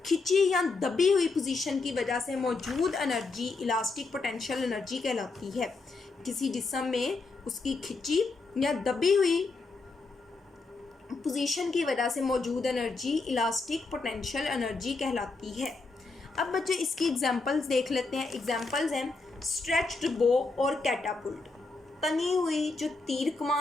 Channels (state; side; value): quieter; right; 3.8 dB